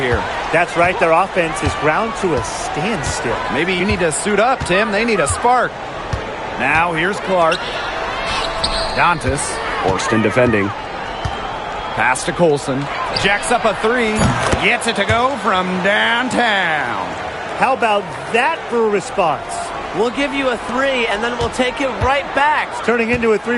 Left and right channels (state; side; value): identical; both; correlation 1.00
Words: That's right. Their offense is ground to a standstill. Maybe you need to suit up, Tim. They need a spark. Now here's Clark. Dantas. Horston defending. Pass to Colson. Jacks up a three. Gets it to go from downtown. How about that for a response? We'll give you a 3, and then we'll take it right back. It's turning into a